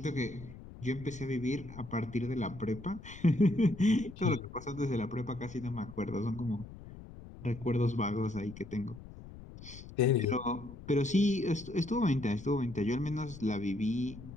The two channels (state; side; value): noise; left; rumble, 15 dB below the sound